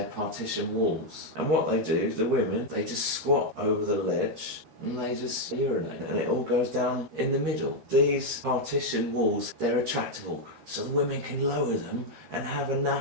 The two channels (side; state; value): left; late; 13 ms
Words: partition walls. And what they do, the women, they just squat over the ledge, and they just urinate, and it all goes down in the middle. These partition walls, they're retractable, so the women can lower them and have a